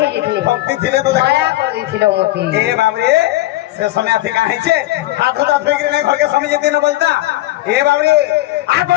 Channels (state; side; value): quieter; right; 16.6 dB